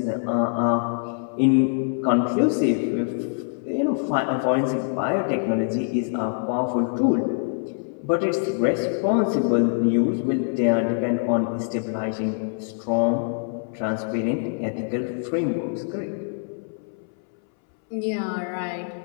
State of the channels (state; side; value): silent; right; 62 dB below the other